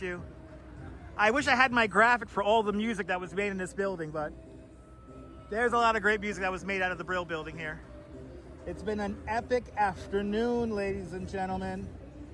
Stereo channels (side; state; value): both; identical; correlation 1.00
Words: you. I wish I had my graphic for all the music that was made in this building, but there's a lot of great music that was made out of the Brill building here. It's been an epic afternoon, ladies and gentlemen.